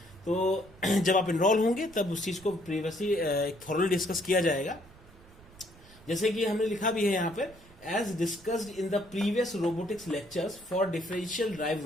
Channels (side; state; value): right; noise; rumble, 23 dB below the sound